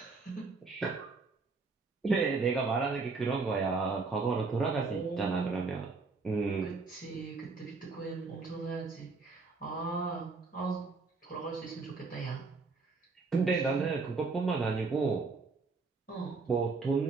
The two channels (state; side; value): quieter; left; 4.2 dB